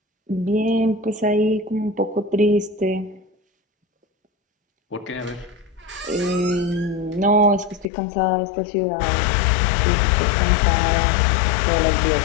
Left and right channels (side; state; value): right; drops out; at 7.9 s